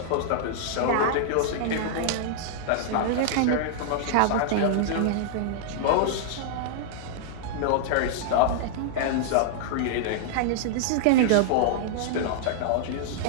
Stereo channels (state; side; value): different; both; correlation -0.01